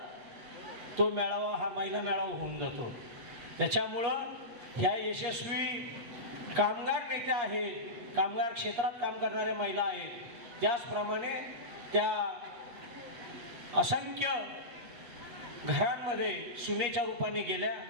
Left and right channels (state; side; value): late; left; 8.4 ms